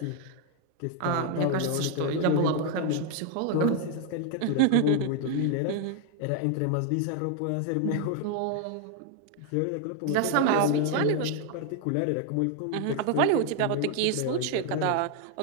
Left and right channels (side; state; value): both; different; correlation 0.01